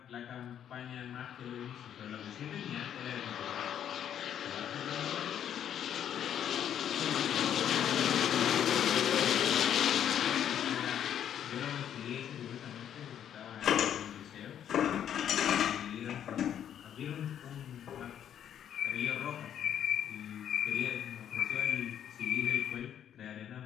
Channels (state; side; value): quieter; right; 9.7 dB